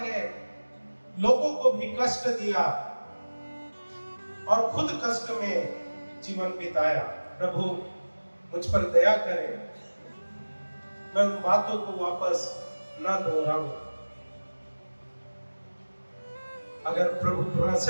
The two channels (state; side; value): inverted; both; correlation -1.00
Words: लोगों को भी कष्ट दिया और खुद कष्ट में जीवन बिताया। प्रभु मुझ पर दया करें, मैं उन बातों को वापस ना दोहराऊं। अगर प्रभु